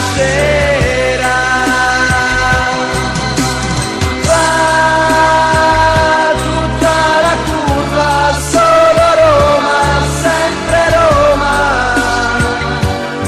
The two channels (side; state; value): both; identical; correlation 1.00